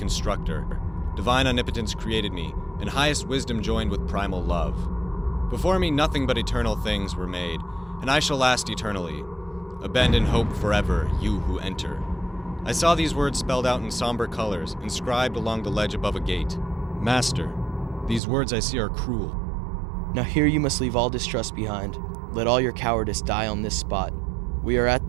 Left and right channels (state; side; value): drops out; left; at 18.2 s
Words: divine omnipotence created me, and highest wisdom joined with primal love. Before me nothing but eternal things were made, and I shall last eternally. Abandon hope forever, you who enter. I saw these words spelled out in somber colors, inscribed along the ledge above a gate. Master, these words I see are cruel. Now here you must leave all distrust behind. Let all your cowardice die on this spot. We are at